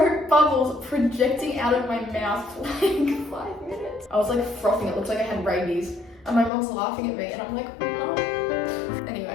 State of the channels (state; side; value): drops out; right; at 6.5 s